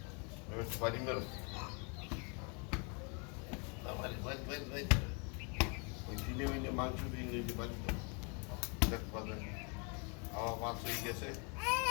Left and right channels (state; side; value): quieter; right; 35.3 dB